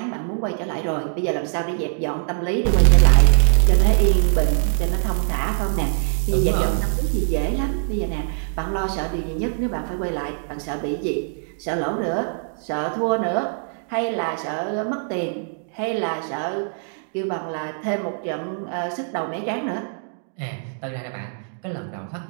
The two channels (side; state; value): left; silent; digital silence